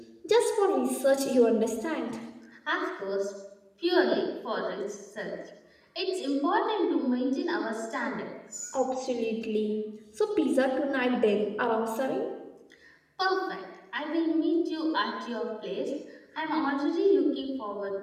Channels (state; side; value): identical; both; correlation 1.00